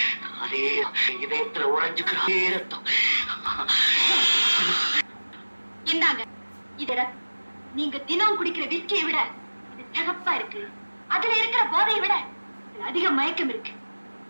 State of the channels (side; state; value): both; inverted; correlation -1.00